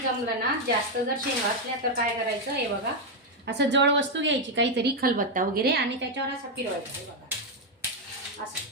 ना, जास्त जर शेंगा असल्या तर काय करायचं, हे बघा असं जड वस्तू घ्यायची, काहीतरी खलबत्ता वगैरे, आणि त्याच्यावर असं फिरवायचं. हे बघा असं.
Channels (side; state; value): both; normal; correlation 0.02